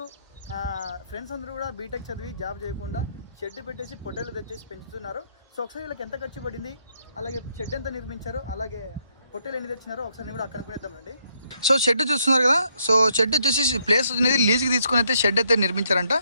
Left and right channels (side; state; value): both; inverted; correlation -0.74